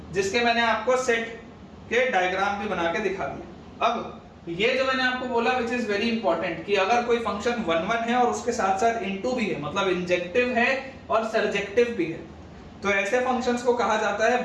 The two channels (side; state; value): both; identical; correlation 1.00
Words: जिसके मैंने आपको सेट के डायग्राम भी बना के दिखा दिया। अब ये जो मैंने आपको बोला विच इज वेरी इंपॉर्टेंट, कि अगर कोई फंक्शन 1 1 है और उसके साथ साथ इनटू भी है, मतलब इंजेक्टिव है और सर्जेक्टिव भी है, तो ऐसे फंक्शंस को कहा जाता है